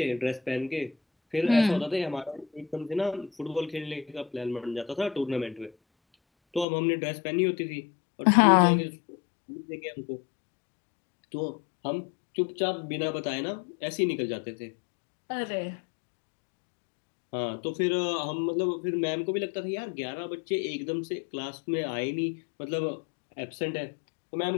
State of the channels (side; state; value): right; drops out; at 6.7 s